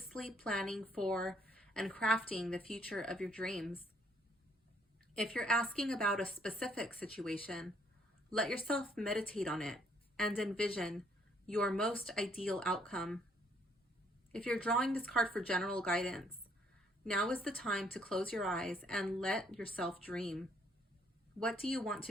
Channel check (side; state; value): both; normal; correlation 0.66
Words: planning for and crafting the future of your dreams. If you're asking about a specific situation, let yourself meditate on it and envision your most ideal outcome. If you're drawing this card for general guidance, now is the time to close your eyes and let yourself dream. What do you want